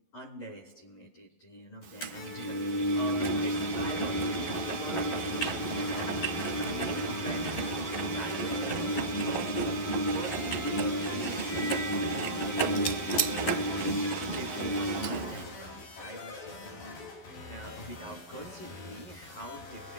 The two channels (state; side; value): late; right; 11 ms